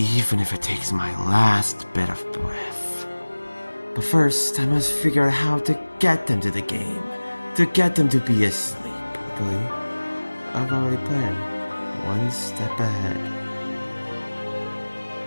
if it takes my last bit of breath. But first, I must figure out how to get them to the game. To get them to be asleep. Luckily, I've already planned. One step ahead.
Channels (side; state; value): both; inverted; correlation -1.00